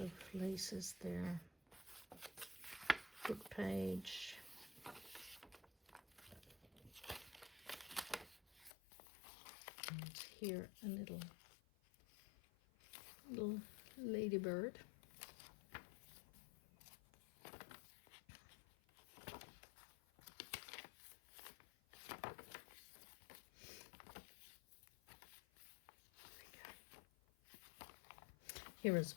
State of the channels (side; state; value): right; drops out; at 8.7 s